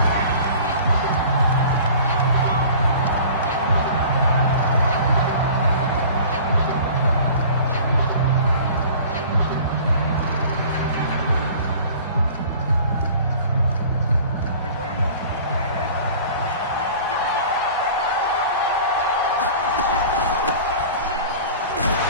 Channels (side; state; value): both; inverted; correlation -0.44